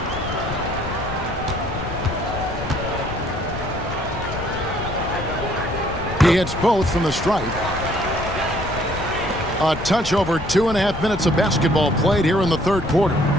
He hits both from the stripe. A touch over 2.5 minutes of basketball played here in the third quarter.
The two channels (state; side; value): noise; left; rumble, 9 dB below the sound